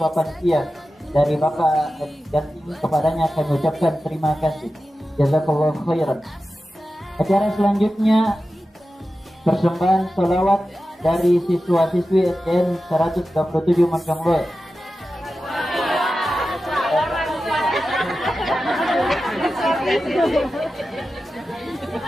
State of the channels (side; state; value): both; normal; correlation 0.93